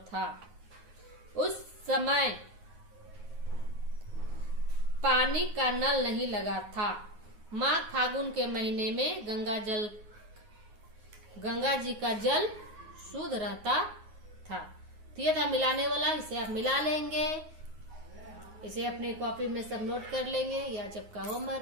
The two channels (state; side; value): late; left; 9.6 ms